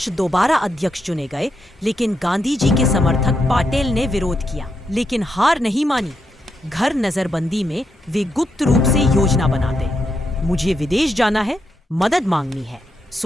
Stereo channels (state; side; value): normal; both; correlation 0.82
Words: दोबारा अध्यक्ष चुने गए, लेकिन गांधी जी के समर्थक पाटेल ने विरोध किया। लेकिन हार नहीं मानी। घर नजरबंदी में वे गुप्त रूप से योजना बनाते। मुझे विदेश जाना है, मदद मांगनी है,